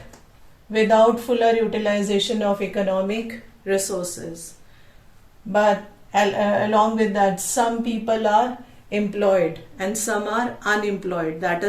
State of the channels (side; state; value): both; identical; correlation 1.00